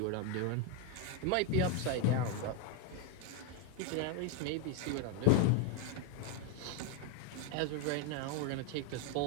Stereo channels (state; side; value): different; both; correlation 0.02